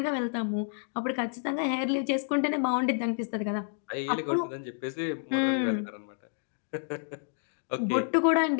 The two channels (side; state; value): right; silent; digital silence